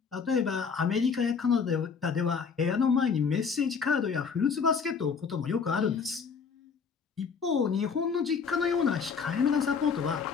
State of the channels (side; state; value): right; quieter; 5.8 dB